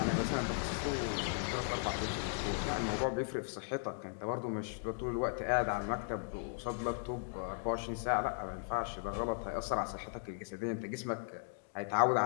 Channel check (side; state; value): right; silent; digital silence